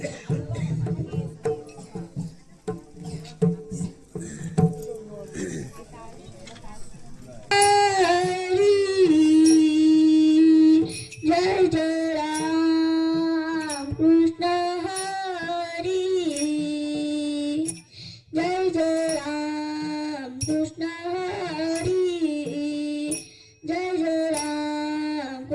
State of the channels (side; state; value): both; identical; correlation 1.00